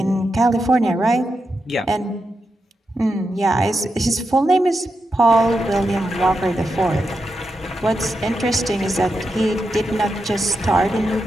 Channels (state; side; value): normal; both; correlation 0.86